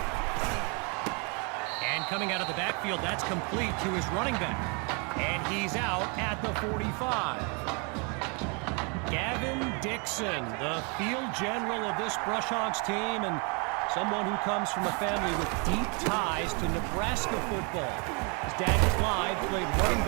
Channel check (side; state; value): left; quieter; 33.8 dB